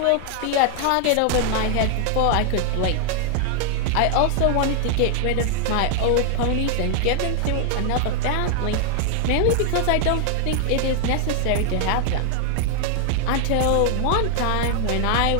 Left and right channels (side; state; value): both; different; correlation 0.00